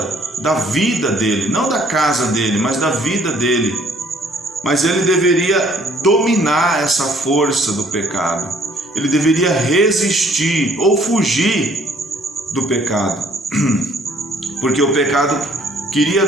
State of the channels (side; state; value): both; normal; correlation 0.60